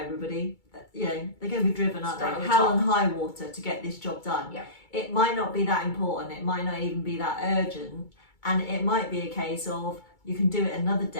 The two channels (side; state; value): right; late; 2.3 ms